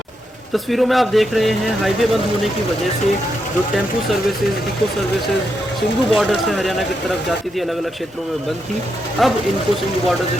तस्वीरों में आप देख रहे हैं हाईवे बंद होने की वजह से जो tempo services, eco services Singhu border से हरियाणा की तरफ जाती थी, अलग अलग क्षेत्रों में बंद थी, अब इनको सिंघू बॉर्डर से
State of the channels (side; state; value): both; normal; correlation 0.83